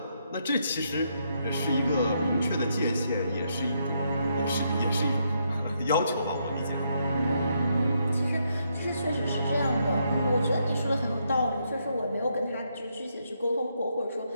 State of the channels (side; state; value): both; inverted; correlation -0.77